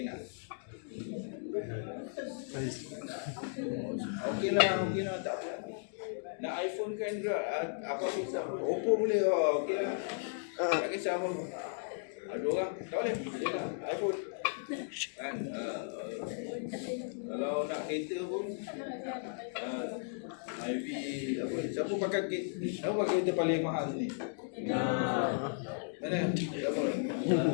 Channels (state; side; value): silent; right; digital silence